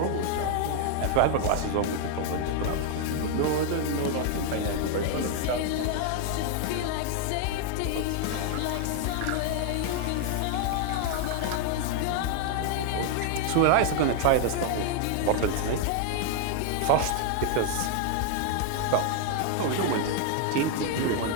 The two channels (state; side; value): different; both; correlation 0.00